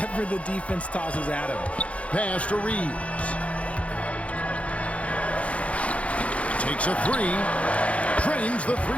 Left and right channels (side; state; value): right; late; 0.064 ms